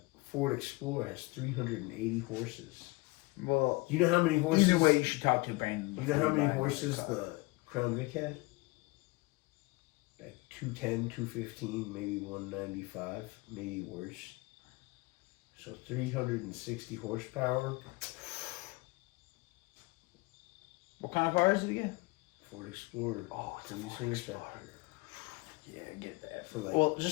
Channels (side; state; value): right; quieter; 24.5 dB